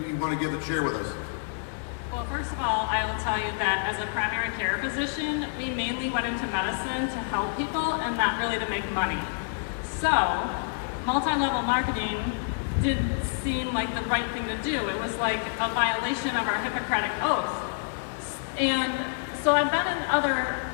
want to give and share with us. Well, first of all, I will tell you that as a primary care physician, we mainly went into medicine to help people and not really to make money. So, multi-level marketing didn't seem like the right thing to do. It was like a violation of our Hippocratic Oath. And so I've been in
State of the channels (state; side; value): silent; right; 56 dB below the other